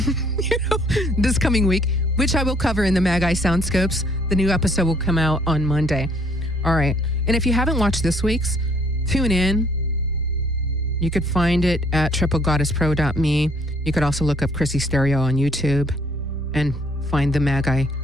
this coming week, which I will cover in the Magi Soundscopes. The new episode will come out on Monday. All right. And if you haven't watched this week's, tune in. You could find it at triplegoddesspro.me. You could also look up Chrissy Stereo on YouTube and find the Magi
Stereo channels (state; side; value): normal; both; correlation 0.63